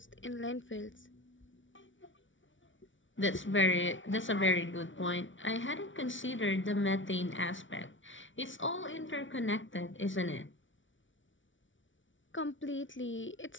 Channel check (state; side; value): late; right; 0.56 ms